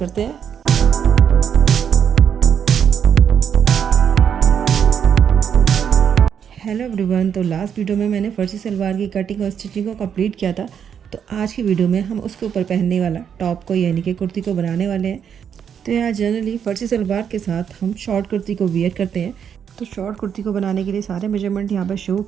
हैं। हेलो एवरीवन, तो लास्ट वीडियो में मैंने फर्जी सलवार की कटिंग और स्टिचिंग को कंप्लीट किया था। तो आज की वीडियो में हम उसके ऊपर पहनने वाला टॉप को यानी कि कुर्ती को बनाने वाले हैं। तो यहाँ जनरली फर्जी सलवार के साथ हम शॉर्ट कुर्ती को वियर करते हैं। तो शॉर्ट कुर्ती को बनाने के लिए सारे मेजरमेंट यहाँ पर शो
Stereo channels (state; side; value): quieter; left; 8.0 dB